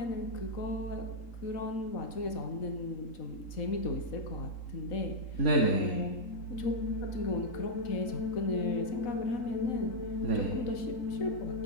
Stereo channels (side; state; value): right; late; 3.8 ms